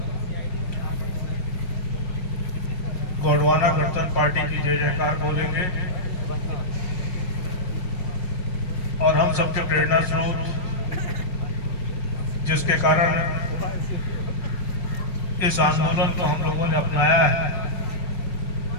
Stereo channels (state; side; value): late; right; 5.4 ms